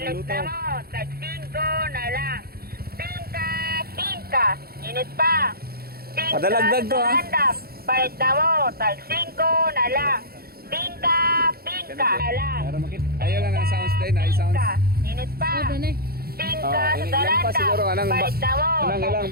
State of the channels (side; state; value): left; late; 0.44 ms